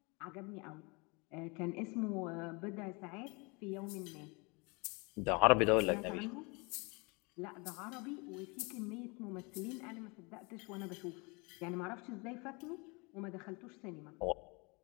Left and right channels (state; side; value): quieter; right; 29.2 dB